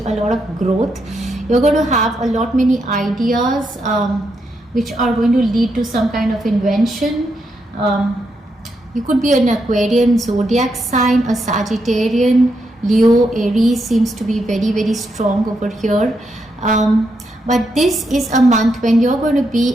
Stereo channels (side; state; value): both; normal; correlation 0.81